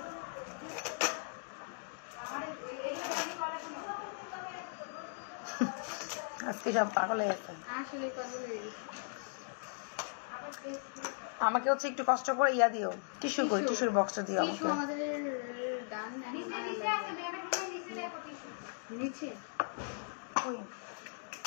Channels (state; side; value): silent; right; digital silence